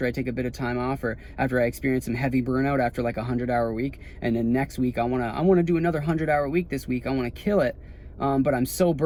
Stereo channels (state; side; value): identical; both; correlation 1.00